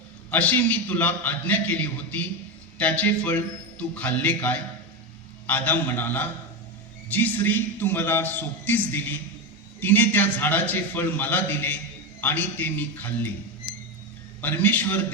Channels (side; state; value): both; normal; correlation 0.14